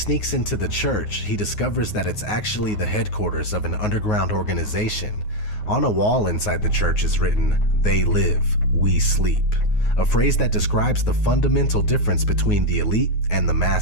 into the church, he discovers that it's actually the headquarters of an underground organization. On a wall inside the church is written, "They live, we sleep," a phrase that describes the fundamental difference between the elite and the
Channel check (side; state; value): right; late; 9.5 ms